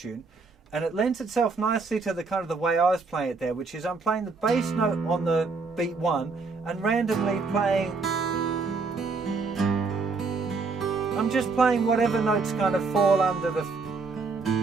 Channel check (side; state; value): left; quieter; 4.4 dB